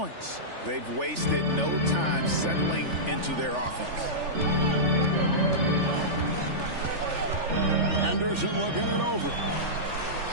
They've wasted no time settling into their offense. Henderson looking it over.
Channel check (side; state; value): left; late; 3.4 ms